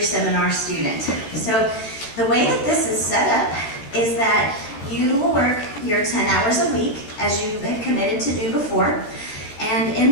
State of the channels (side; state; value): right; late; 14 ms